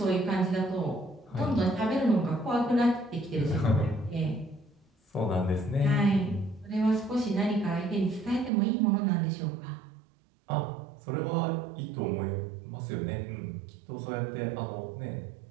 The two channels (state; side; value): drops out; left; at 8.5 s